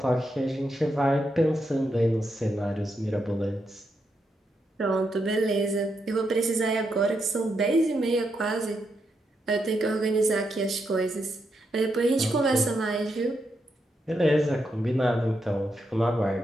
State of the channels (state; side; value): normal; both; correlation 0.82